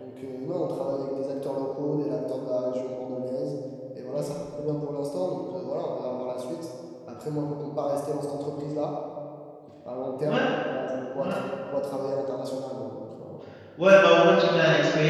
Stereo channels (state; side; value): identical; both; correlation 1.00